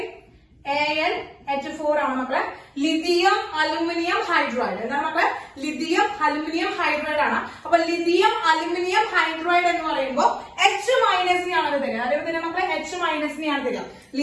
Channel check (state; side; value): identical; both; correlation 1.00